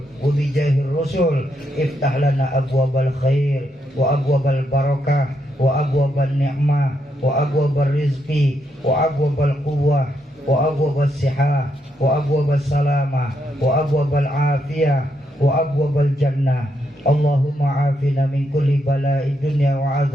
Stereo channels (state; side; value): normal; both; correlation 0.79